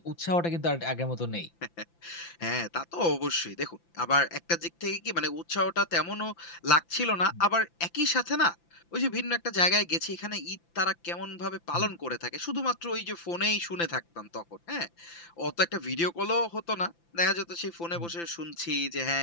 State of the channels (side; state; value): right; late; 5.9 ms